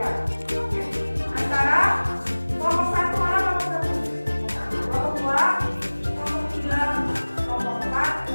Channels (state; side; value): inverted; both; correlation -1.00